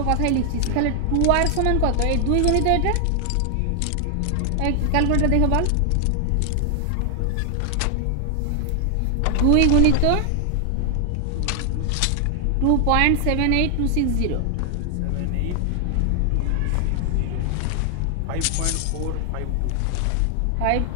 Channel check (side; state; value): both; different; correlation 0.00